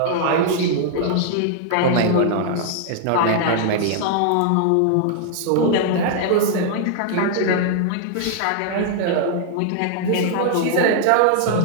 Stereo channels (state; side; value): different; both; correlation 0.00